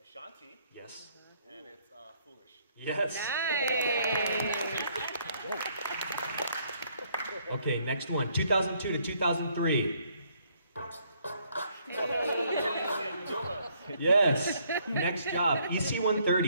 Ashanti, Yes. and it's Foolish. Yes. Okay, next one, 2002 to 2003. Yes. Next job,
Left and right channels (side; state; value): both; inverted; correlation -0.68